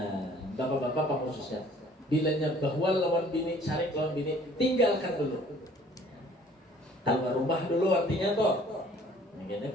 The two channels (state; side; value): normal; both; correlation 0.54